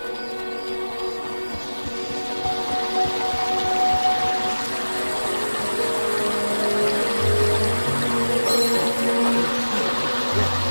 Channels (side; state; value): both; inverted; correlation -1.00